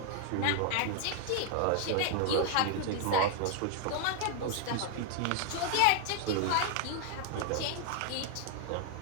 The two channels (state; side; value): different; both; correlation 0.00